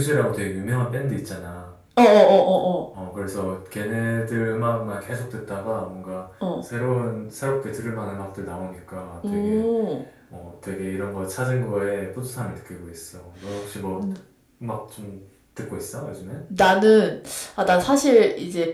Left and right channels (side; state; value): both; identical; correlation 1.00